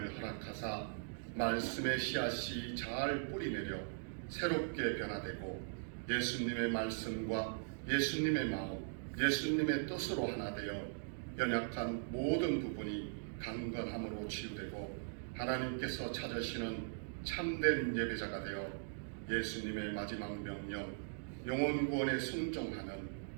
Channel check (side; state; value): left; silent; digital silence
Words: 허락하사 말씀의 씨앗이 잘 뿌리내려 새롭게 변화되고 예수님의 말씀과 예수님의 마음, 예수님의 뜻으로 하나 되어 연약한 모든 부분이 강건함으로 치유되고 하나님께서 찾으시는 참된 예배자가 되어 예수님의 마지막 명령 영혼 구원에 순종하는